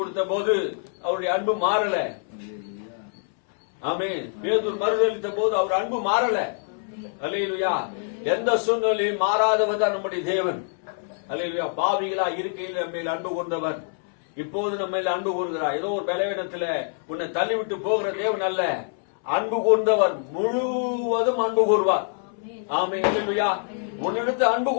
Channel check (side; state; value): right; silent; 62 dB below the other